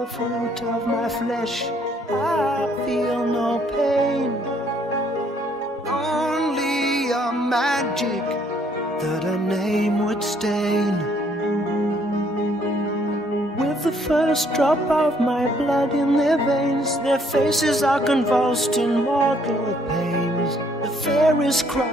fruit of my flesh, I feel no pain, only a magic that a name would stain. With the first drop of my blood in their veins, their faces are convulsed in mortal pains. The fairest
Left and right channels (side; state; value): both; normal; correlation 0.66